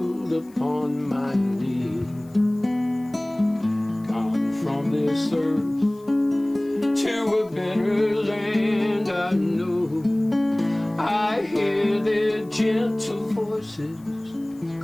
upon my knee. Gone from this earth to a better land I know, I hear their gentle voices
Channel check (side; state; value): left; noise; hiss, 29 dB below the sound